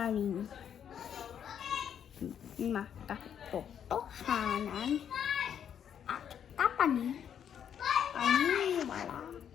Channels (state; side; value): quieter; right; 8.7 dB